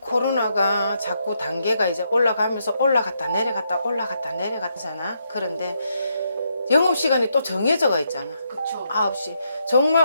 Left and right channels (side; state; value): both; inverted; correlation -0.79